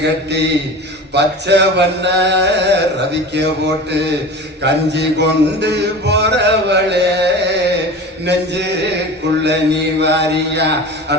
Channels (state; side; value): normal; both; correlation 0.34